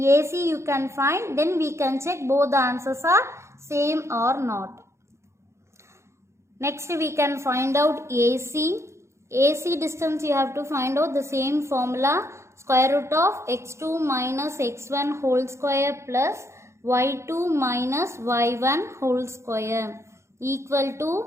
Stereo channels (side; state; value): left; late; 0.13 ms